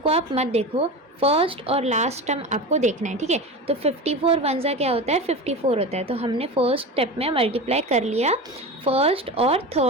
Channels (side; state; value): both; normal; correlation 0.27